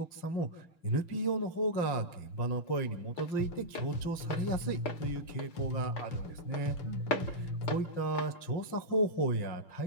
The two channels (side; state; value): right; late; 5.7 ms